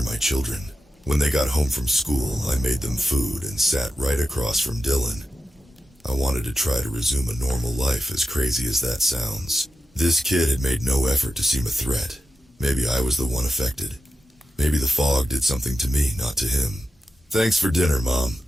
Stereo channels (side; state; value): both; normal; correlation 0.90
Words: my children. When they got home from school, I made them food and sat right across from Dylan. I wanted to try to resume a normal life, as crazy as that sounds. This kid had made no effort to seem a threat. Maybe I was the one affected. Maybe the fog did something to me, not to him. Thanks for dinner, Mom,